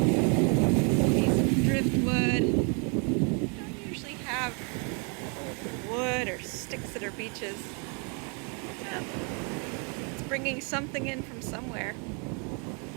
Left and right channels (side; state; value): left; quieter; 36.3 dB